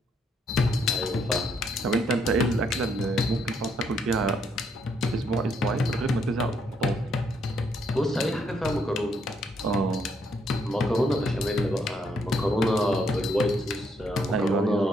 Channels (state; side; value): normal; both; correlation 0.73